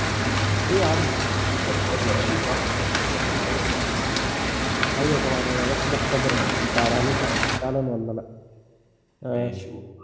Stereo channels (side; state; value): both; identical; correlation 1.00